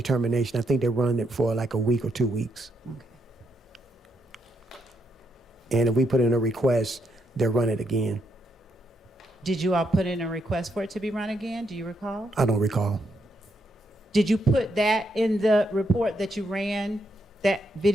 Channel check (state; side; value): normal; both; correlation 0.78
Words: I think they run it for like a week or 2 weeks. And if we put in a request, they'll run it again. Did you all put in a request for it to be run again? Do you recall? I don't recall. Did you put that in the report that you ran, that